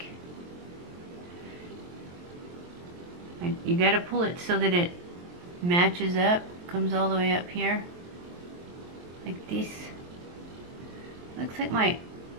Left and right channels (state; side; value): late; left; 23 ms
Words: you gotta pull it so that it matches up, comes all the way up here, like this. Looks like my